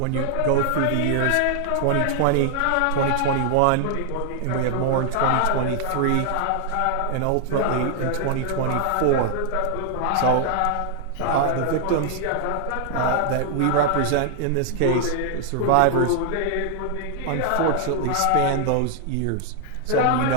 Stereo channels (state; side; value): different; both; correlation 0.00